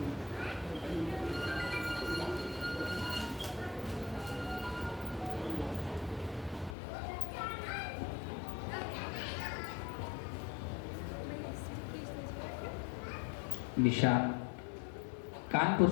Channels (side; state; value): right; drops out; at 6.8 s